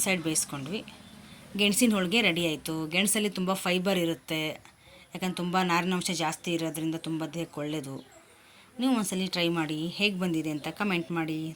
ಸೈಡ್ ಬೇಯಿಸ್ಕೊಂಡ್ವಿ. ಗೆಣಸಿನ ಹೋಳಿಗೆ ರೆಡಿ ಆಯಿತು. ಗೆಣಸಲ್ಲಿ ತುಂಬ ಫೈಬರ್ ಇರುತ್ತೆ, ಯಾಕಂದ್ರೆ ತುಂಬ ನಾರಿನಾಂಶ ಜಾಸ್ತಿ ಇರೋದ್ರಿಂದ ತುಂಬ ದೇಹಕ್ಕೆ ಒಳ್ಳೆಯದು. ನೀವು ಒಂದ್ಸಲಿ ಟ್ರೈ ಮಾಡಿ, ಹೇಗೆ ಬಂದಿದೆ ಅಂತ ಕಮೆಂಟ್ ಮಾಡಿ.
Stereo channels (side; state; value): both; identical; correlation 1.00